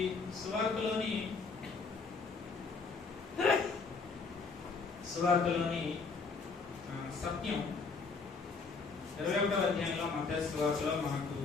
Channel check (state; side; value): quieter; right; 4.6 dB